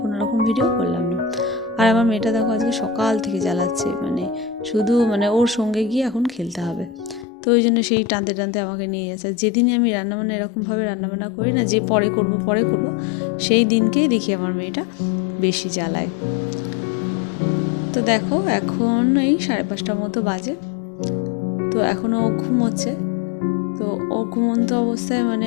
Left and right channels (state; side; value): drops out; right; at 7.2 s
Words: রকম ভিডিও করলাম না। আর আমার মেয়েটা দেখো আজকে সকাল থেকে জ্বালাচ্ছে, শুধু ওর সঙ্গে গিয়ে এখন খেলতে হবে। তো ওই জন্য সেই টানতে টানতে আমাকে নিয়ে যাচ্ছে। যেদিনই আমি রান্নাবান্না এরকমভাবে রান্নাবান্না করি না, যে পরে করব সেই দিনকেই দেখি আমার মেয়েটা বেশি জ্বালায়। তো দেখো এখন এই 5:30 মতো বাজে, তো এখনও ও ঘুমোচ্ছে। তো ও ঘুমন্ত অবস্থায়